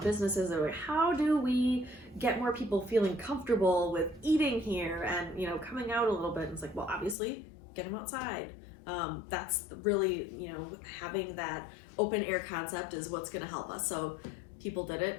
businesses. They're like, how do we get more people feeling comfortable with eating here and, coming out a little bit? And it's like, well, obviously, get them outside. That's really, having that open air concept is what's going to help us. So people did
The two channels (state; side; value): drops out; right; at 7.2 s